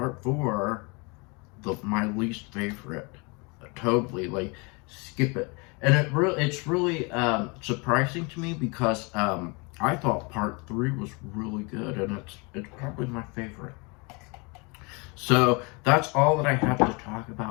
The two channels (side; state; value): right; quieter; 29.9 dB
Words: 4, my least favorite. Totally, like, skip it. And it's really surprising to me because I thought part 3 was really good, and it's probably my favorite. So that's all that I have to talk